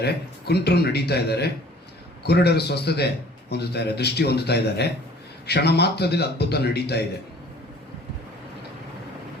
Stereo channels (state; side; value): normal; both; correlation 0.51